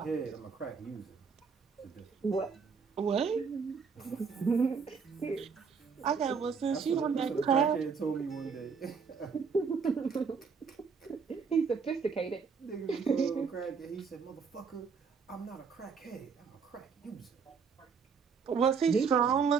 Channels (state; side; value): quieter; left; 5.7 dB